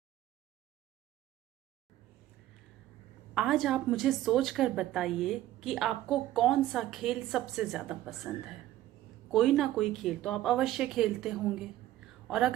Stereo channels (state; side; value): quieter; left; 14.2 dB